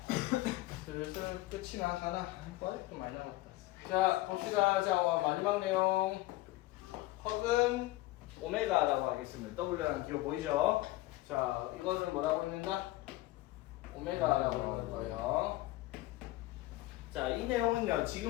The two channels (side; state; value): right; quieter; 18.3 dB